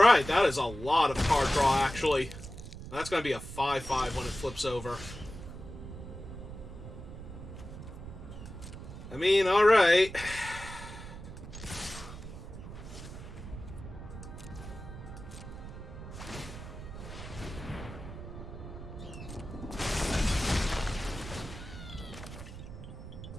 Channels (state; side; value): noise; right; rumble, 11 dB below the sound